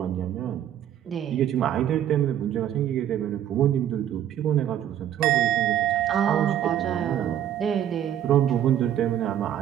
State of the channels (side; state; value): left; quieter; 10.7 dB